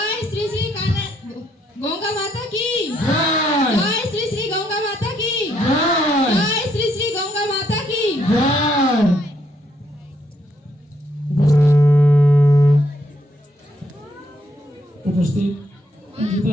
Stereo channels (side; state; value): both; normal; correlation 0.73